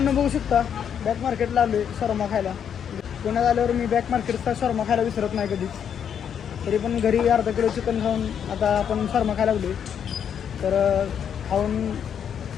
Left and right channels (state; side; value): quieter; right; 8.3 dB